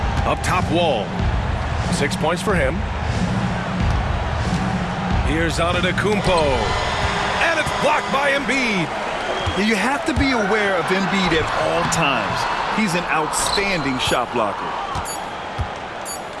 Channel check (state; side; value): identical; both; correlation 1.00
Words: Up top, Wall. 6 points for him. Here's Antetokounmpo. And it's Blocked by Embiid. You have to be aware of Embiid at all times. He's an outstanding shot blocker.